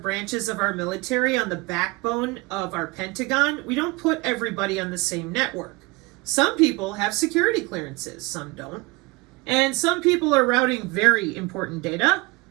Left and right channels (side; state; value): left; quieter; 24.5 dB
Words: of our military on the backbone of our Pentagon, we don't put everybody on the same network. Some people have security clearances, some don't. And some people are routing very important data,